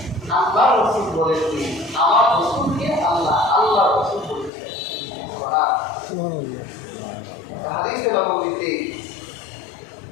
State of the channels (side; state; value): right; drops out; at 4.5 s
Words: আল্লাহ রাসূল বলেননি, আমার রাসূলকে আল্লাহ আল্লাহ রাসূল বলেছেন। সুবহানাল্লাহ। হাদিসে নববীতে